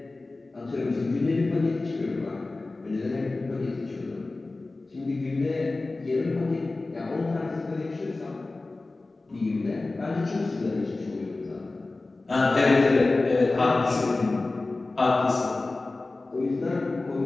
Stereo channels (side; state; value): right; quieter; 3.3 dB